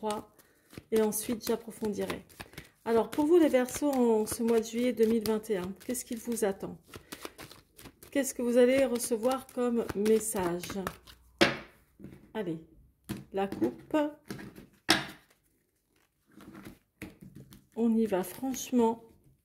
et ensuite j'approfondirai. Alors pour vous les Verseaux en ce mois de juillet 2021, qu'est-ce qu'il vous attend ? Qu'est-ce que vous allez recevoir comme message? Allez, la coupe. On y va franchement.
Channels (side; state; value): both; identical; correlation 1.00